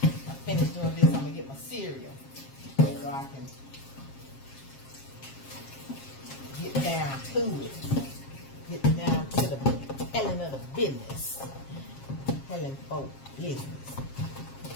finished doing this. I'm gonna get my cereal so I can get down to it. Get down to the telling of the business. Telling folk business.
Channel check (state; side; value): late; right; 7.4 ms